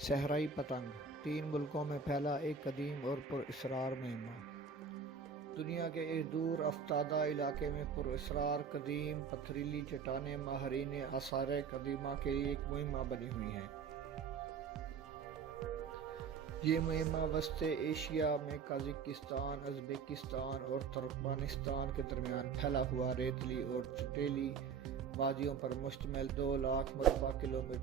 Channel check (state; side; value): quieter; left; 5.9 dB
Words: پتنگ 3 ملکوں میں پھیلا ایک قدیم اور پراسرار مہمہ۔ دنیا کے ایک دور افتادہ علاقے میں پراسرار قدیم پتھریلی چٹانیں ماہرین آثار قدیمہ کے لیے ایک مہمہ بنی ہوئی ہیں۔ یہ مہمہ وسط ایشیا میں قازقستان، ازبکستان اور ترکمانستان کے درمیان پھیلا ہوا ریتلی اور چٹیلی وادیوں پر مشتمل 2 لاکھ مربع